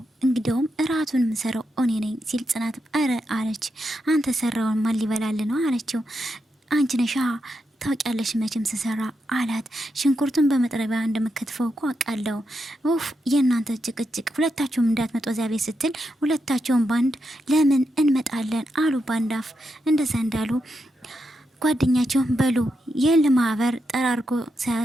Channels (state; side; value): normal; both; correlation 0.85